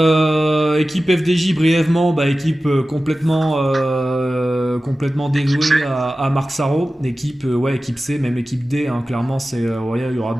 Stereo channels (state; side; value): normal; both; correlation 0.95